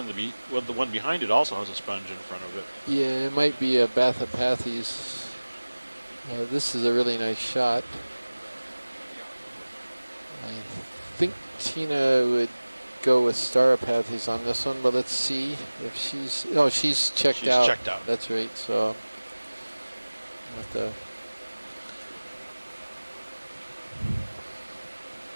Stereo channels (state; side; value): inverted; both; correlation -1.00